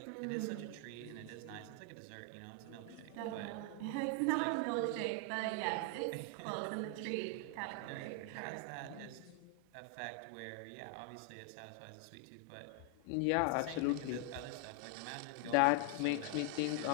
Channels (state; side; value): different; both; correlation 0.00